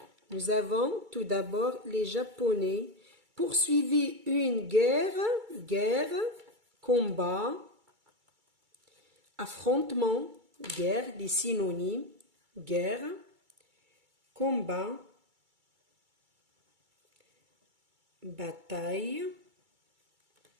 Nous avons tout d'abord les Japonais poursuivaient une guerre, combat, affrontement, guerre, des synonymes, guerre, combat, bataille,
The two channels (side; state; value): left; late; 2.3 ms